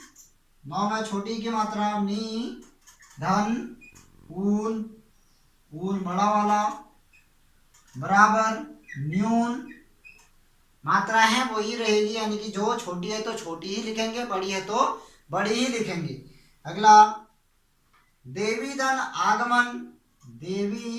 नौ में छोटी की मात्रा नी धन ऊन, ऊन बड़ा वाला बराबर न्यून, मात्रा है वही रहेगी, यानी कि जो छोटी है तो छोटी ही लिखेंगे, बड़ी है तो बड़ी ही लिखेंगे। अगला देवी धन आगमन,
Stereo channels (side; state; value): both; identical; correlation 1.00